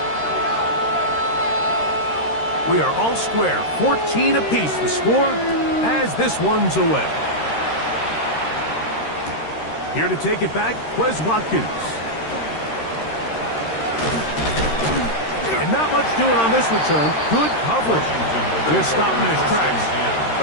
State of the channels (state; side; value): late; right; 13 ms